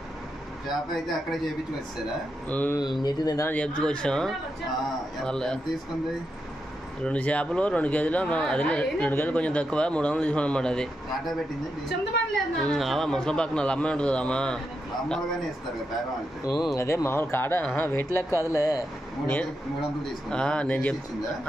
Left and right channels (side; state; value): both; normal; correlation 0.85